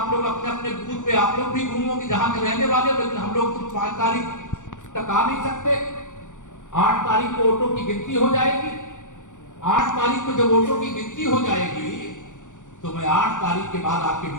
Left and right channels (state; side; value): late; right; 0.86 ms